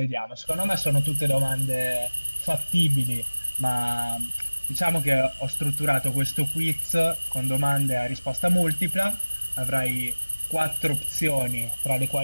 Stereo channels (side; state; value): both; inverted; correlation -1.00